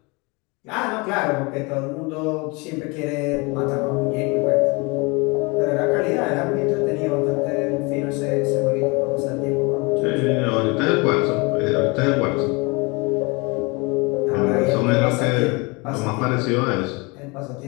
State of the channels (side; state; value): right; quieter; 27.8 dB